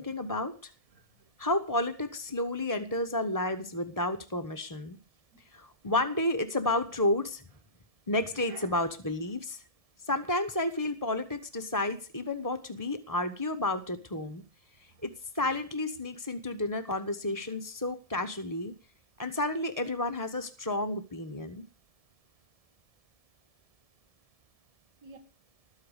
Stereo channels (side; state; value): left; late; 1.7 ms